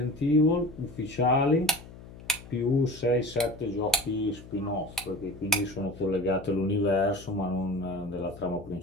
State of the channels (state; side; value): noise; left; hum, 17 dB below the sound